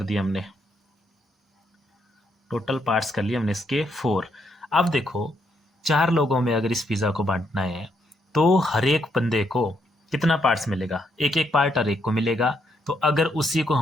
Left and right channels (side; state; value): both; normal; correlation 0.76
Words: दिए हमने, टोटल पार्ट्स कर लिए हमने इसके 4। अब देखो, 4 लोगों में अगर इस पिज़्ज़ा को बांटना है तो हर एक बंदे को कितना पार्ट्स मिलेगा, एक एक पार्ट हर एक को मिलेगा। तो अगर उसी को